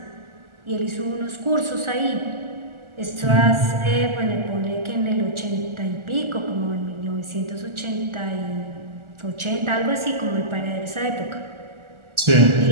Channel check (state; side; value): late; left; 1.4 ms